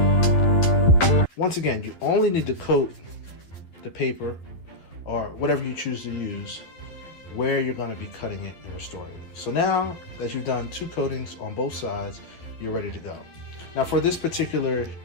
Once again, you only need to coat the paper or whatever you choose to use where you're going to be cutting it and restoring it. So now that you've done 2 coatings on both sides, you're ready to go. Now for this particular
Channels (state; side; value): late; right; 12 ms